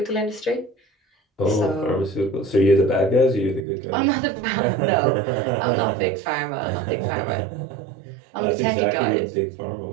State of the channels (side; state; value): left; drops out; at 3.7 s